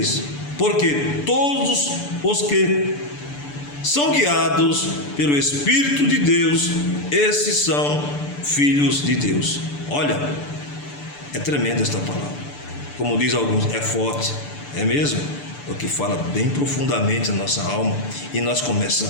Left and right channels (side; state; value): right; late; 6.9 ms